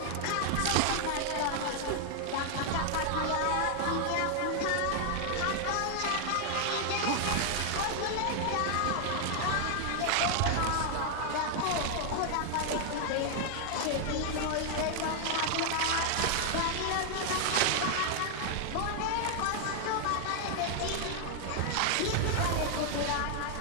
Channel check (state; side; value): different; both; correlation 0.00